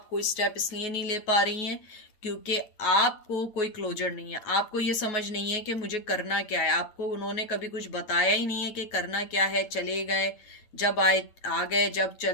कोई स्टेप इसलिए नहीं ले पा रही हैं क्योंकि आपको कोई क्लोजर नहीं है। आपको ये समझ नहीं है कि मुझे करना क्या है। आपको उन्होंने कभी कुछ बताया ही नहीं है कि करना क्या है। चले गए, जब आए आ गए, जब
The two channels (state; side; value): late; right; 8.9 ms